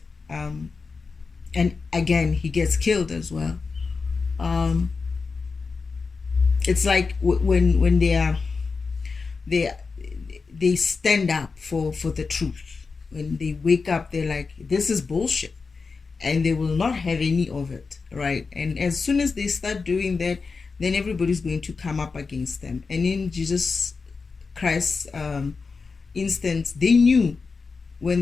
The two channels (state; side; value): quieter; right; 4.6 dB